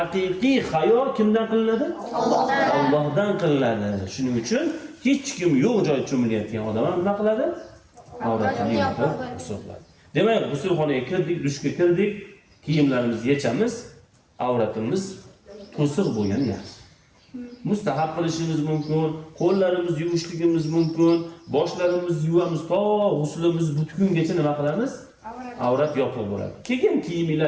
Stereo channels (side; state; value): both; identical; correlation 1.00